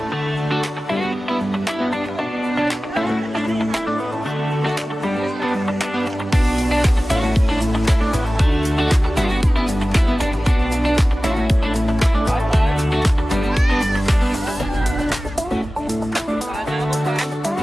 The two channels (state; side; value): normal; both; correlation 0.96